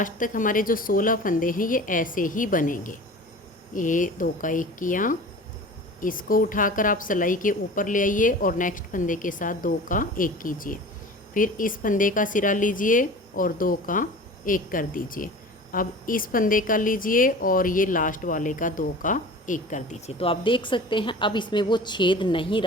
तक हमारे जो 16 फंदे हैं ये ऐसे ही बनेंगे। ये 2 का 1 किया, इसको उठाकर आप सिलाई के ऊपर ले आइए और नेक्स्ट फंदे के साथ 2 का 1 कीजिए। फिर इस फंदे का सिरा लीजिए और 2 का 1 कर दीजिए। अब इस फंदे का लीजिए और ये लास्ट वाले का 2 का 1 कर दीजिए। तो आप देख सकते हैं अब इसमें वो छेद नहीं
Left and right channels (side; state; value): both; normal; correlation 0.38